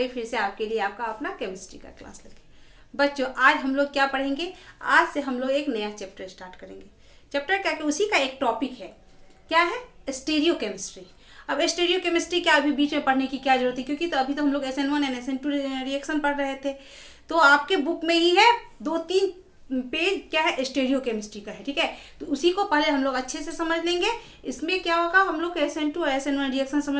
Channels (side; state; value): both; identical; correlation 1.00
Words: फिर से आपके लिए आपका अपना केमिस्ट्री का क्लास लेके। बच्चों, आज हम लोग क्या पढ़ेंगे? आज से हम लोग एक नया चैप्टर स्टार्ट करेंगे। चैप्टर क्या कि उसी का एक टॉपिक है। क्या है? Stereo chemistry. अब स्टीरियो केमिस्ट्री क्या अभी बीच में पढ़ने की क्या जरूरत है, क्योंकि तो अभी तो हम लोग SN1 एंड SN2 रिएक्शन पढ़ रहे थे। तो आपके बुक में ही है 2-3 पेज क्या है स्टीरियो केमिस्ट्री का है। ठीक है, तो उसी को पहले हम लोग अच्छे से समझ लेंगे। इसमें क्या होगा, हम लोग SN2 और SN1 रिएक्शन